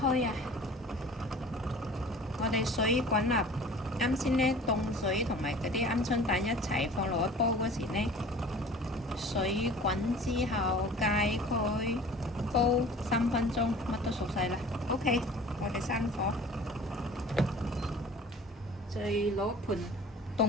啊！我哋水滾啦，啱先呢凍水同埋嗰啲鵪鶉蛋一齊放落去煲嗰時呢，水滾之後解開。煲3分鐘，乜都熟晒啦。OK， 我哋閂火，再攞盆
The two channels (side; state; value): both; normal; correlation 0.45